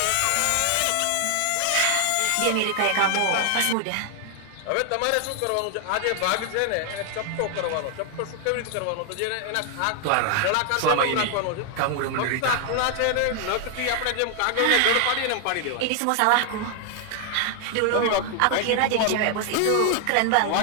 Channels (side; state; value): both; different; correlation 0.00